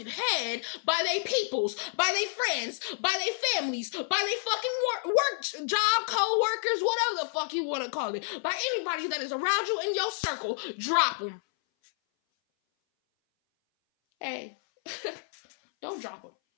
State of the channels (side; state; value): right; silent; 58 dB below the other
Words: head by their peoples, by their friends, by their families, by their fucking work job, co-workers, whatever the fuck you want to call it, by anybody that is around you in your circle, drop them. Hey, don't drop them.